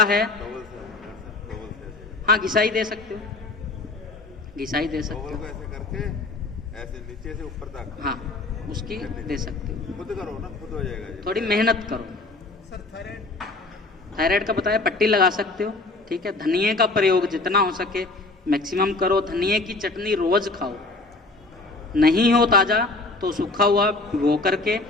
है, हाँ घिसाई दे सकते हो, घिसाई दे सकते हो, ऐसे करके ऐसे नीचे से ऊपर तक, हाँ उसकी दे सकते हो। खुद करो ना, खुद हो जाएगा ये। थोड़ी मेहनत करो। थायराइड का बताया, पट्टी लगा सकते हो, ठीक है। धनिए का प्रयोग जितना हो सके मैक्सिमम करो। धनिए की चटनी रोज खाओ, नहीं हो ताजा तो सूखा हुआ भिगो करके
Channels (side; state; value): right; quieter; 3.3 dB